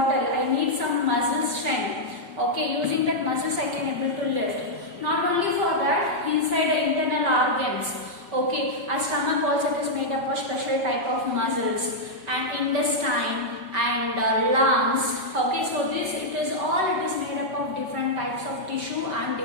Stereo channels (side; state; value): left; late; 5.2 ms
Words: I need some muscle strength. Okay, using that muscles I can able to lift. Not only for that, inside the internal organs. Okay, our stomach also it is made up of special type of muscles and intestine and lungs. Okay, so this it is made up of different types of tissue and